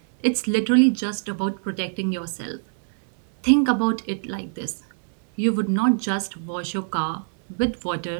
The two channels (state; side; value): silent; left; 63 dB below the other